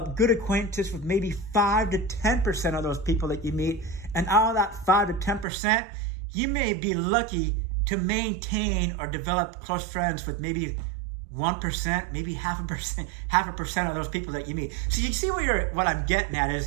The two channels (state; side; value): drops out; left; at 5.5 s